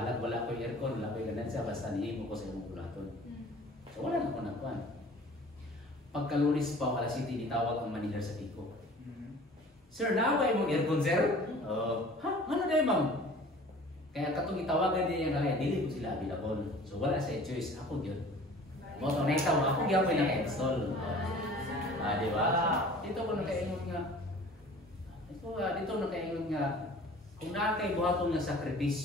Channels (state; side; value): normal; both; correlation 0.46